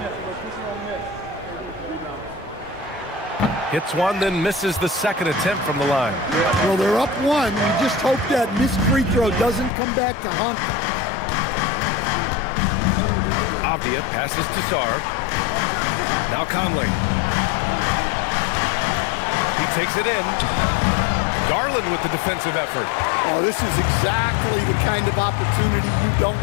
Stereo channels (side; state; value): right; drops out; at 9.7 s